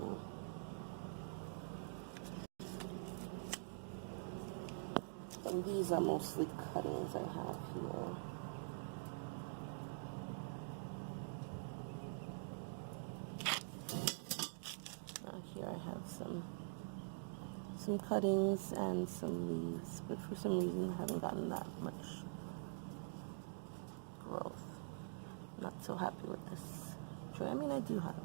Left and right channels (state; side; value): silent; left; digital silence